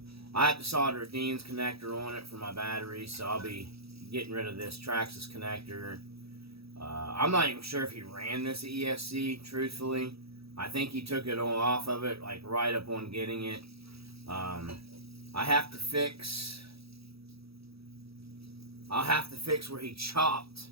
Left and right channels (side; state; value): left; late; 0.77 ms